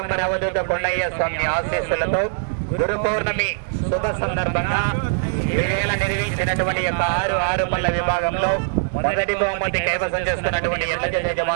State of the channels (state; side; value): silent; left; digital silence